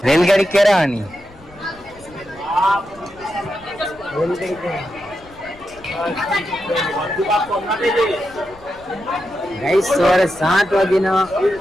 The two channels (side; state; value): left; noise; rumble, 24 dB below the sound